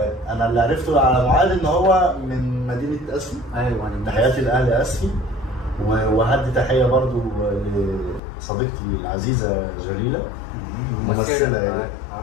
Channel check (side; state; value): right; drops out; at 8.2 s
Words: انا اللي عرفته على معاذ ان هو من مدينه اسفي. ايوه، تحياتي لاهل اسفي، وهدي تحيه برضو لصديقتي العزيزه جليله، ممثله يعني،